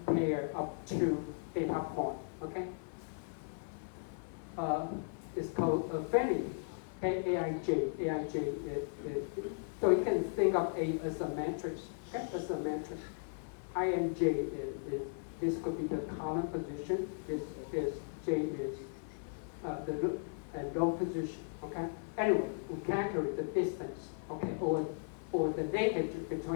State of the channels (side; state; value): right; silent; 53 dB below the other